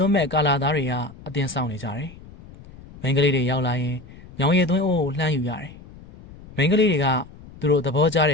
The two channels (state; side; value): noise; left; rumble, 19 dB below the sound